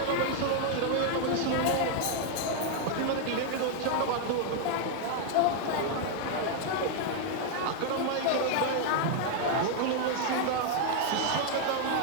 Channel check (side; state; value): both; different; correlation 0.00